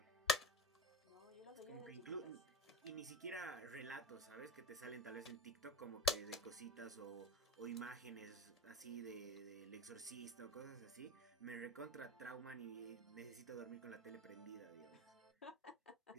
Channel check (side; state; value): both; normal; correlation 0.31